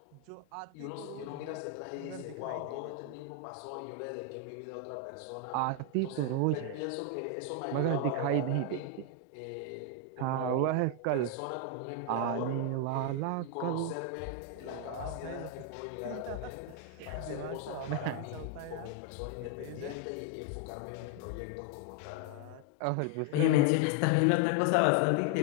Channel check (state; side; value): different; both; correlation 0.01